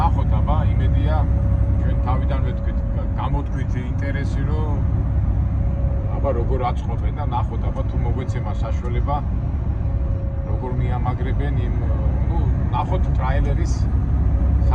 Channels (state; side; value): identical; both; correlation 1.00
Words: აბა, იმედია ჩვენ თავიდან ვეთქვით, გამოთქვით ინტერესი, რომ აბა როგორ აწყობენ და ნახოთ აბა თუ მოგვეცემა საშუალება როგორ მიამაგრებენ იმ, ნახოთ ტრაილერის